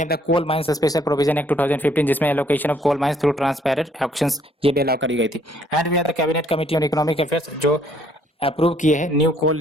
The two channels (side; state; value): both; normal; correlation 0.65